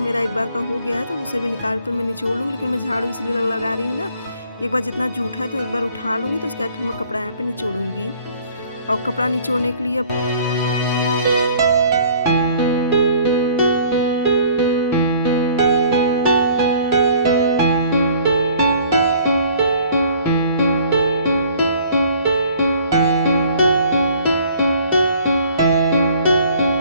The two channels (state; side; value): inverted; both; correlation -0.55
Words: एक बार का हो गया है, तो उसे भी निकाल कर मैं निचोड़ लूँगी। लेकिन मैं झाड़ू इसलिए लगा रही हूँ ना, एक बार जितना जूठा है तो एक बार उठा लूँगी, तो उसके बाद फिर मैं कपड़ा यहाँ पे निचोड़ूँगी। और कपड़ा निचोड़ने के लिए